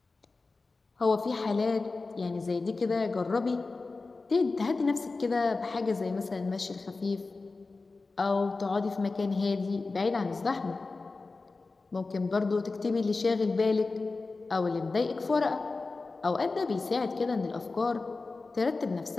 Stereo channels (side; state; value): right; quieter; 3.8 dB